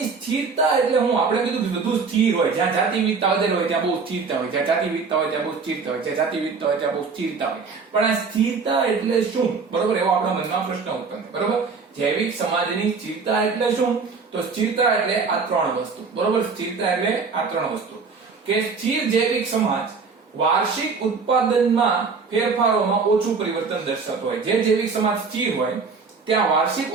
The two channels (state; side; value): quieter; left; 4.9 dB